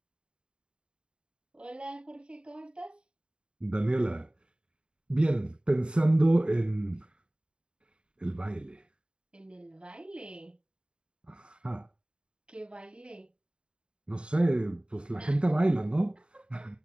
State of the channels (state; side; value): late; left; 0.052 ms